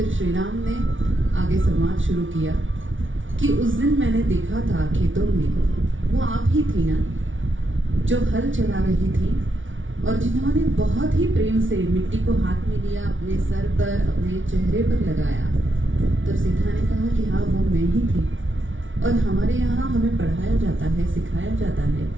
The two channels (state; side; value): late; left; 0.56 ms